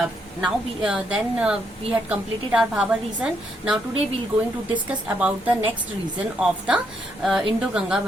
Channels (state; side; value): normal; both; correlation 0.75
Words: We had completed our Bhabar region. Now today we are going to discuss about the next region of the Indo-Ganga